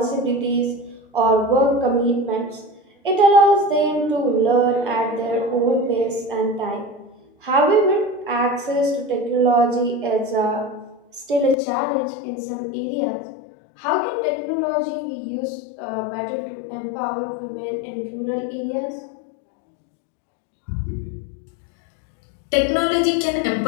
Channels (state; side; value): drops out; right; at 11.6 s